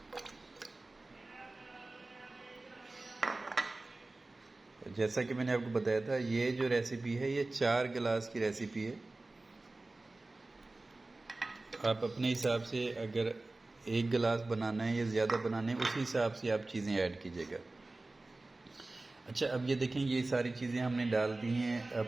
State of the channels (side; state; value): left; quieter; 3.1 dB